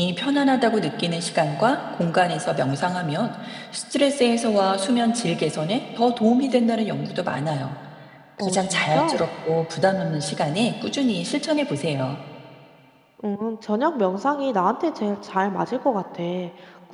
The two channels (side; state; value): both; identical; correlation 1.00